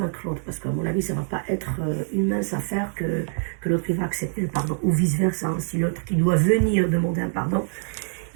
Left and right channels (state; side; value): silent; left; 62 dB below the other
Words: l'autre, parce qu'à mon avis, ça ne va pas être une mince affaire que l'autre va accepter le pardon, ou vice-versa. Hein. Si l'autre qui doit venir demander un pardon,